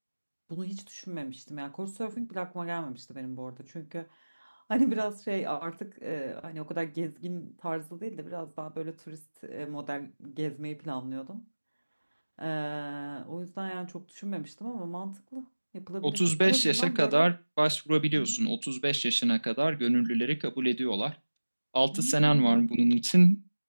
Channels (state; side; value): inverted; both; correlation -1.00